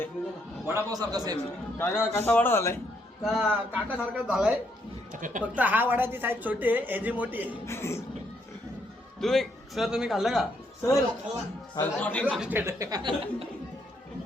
वडापाव सारखा सेम. काका कसा वडा झालाय? काका सारखा झालाय. फक्त हा वडाची साईज छोटी आहे, याची मोठी आहे. तुम्ही खाल्लं का? सर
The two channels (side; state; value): both; normal; correlation 0.73